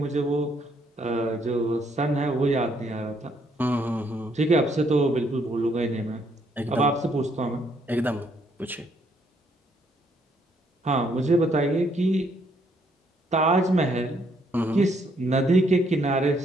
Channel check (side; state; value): both; normal; correlation 0.70